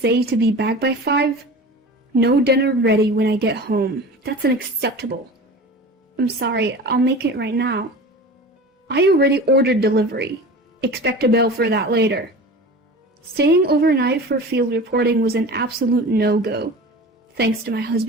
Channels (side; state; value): both; normal; correlation 0.36